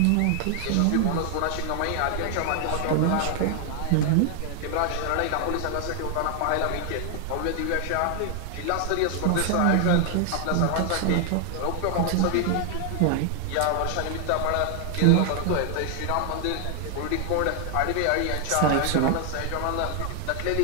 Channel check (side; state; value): both; different; correlation 0.00